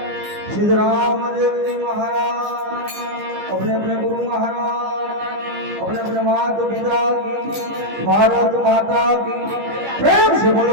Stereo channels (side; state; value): left; late; 15 ms